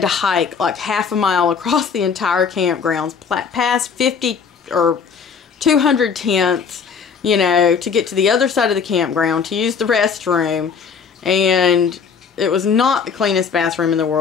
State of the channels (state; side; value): quieter; right; 6.2 dB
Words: to hike like half a mile across the entire campgrounds, past 50 or 200 tents, you know, to get to the other side of the campground to use the restroom. And it was not the cleanest bathroom in the